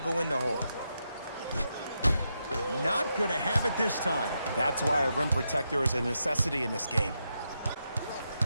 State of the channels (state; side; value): inverted; both; correlation -0.84